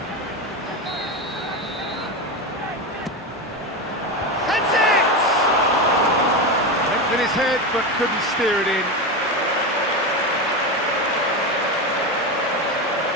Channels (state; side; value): normal; both; correlation 0.17